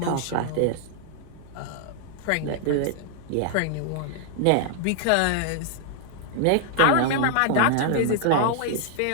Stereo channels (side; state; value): both; different; correlation 0.00